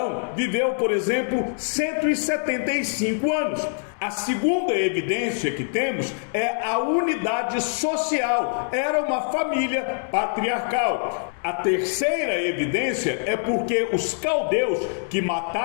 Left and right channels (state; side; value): silent; right; digital silence